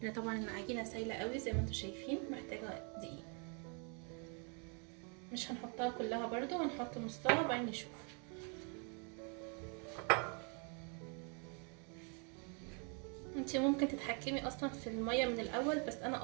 لان طبعا العجينه سايله قوي زي ما انتم شايفين، محتاجه دقيق. مش هنحطها كلها برضو، هنحط نصها وبعدين نشوف. انتي ممكن تتحكمي اصلا في الميه من الاول، بس انا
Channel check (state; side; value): quieter; left; 38.6 dB